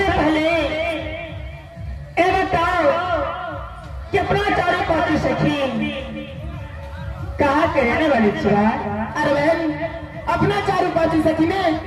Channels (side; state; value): both; identical; correlation 1.00